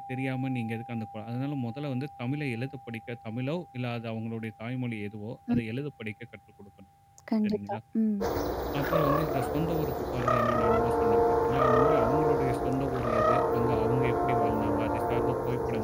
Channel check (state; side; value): identical; both; correlation 1.00